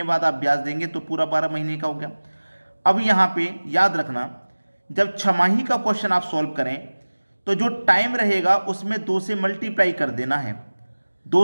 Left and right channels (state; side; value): inverted; both; correlation -1.00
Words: बाद आप ब्याज देंगे तो पूरा 12 महीने का हो गया। अब यहाँ पे याद रखना, जब छमाही का क्वेश्चन आप सॉल्व करें तो जो टाइम रहेगा उसमें 2 से मल्टीप्लाई कर देना है।